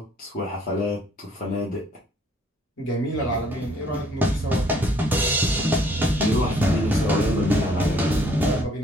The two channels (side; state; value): both; normal; correlation 0.62